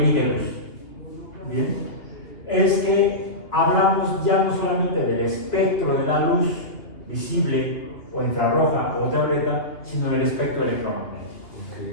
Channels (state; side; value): late; right; 2.6 ms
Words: luz. Bien, es que hablamos ya no solamente del espectro de la luz visible o infrarroja o ultravioleta, sino del espectro electromagnético.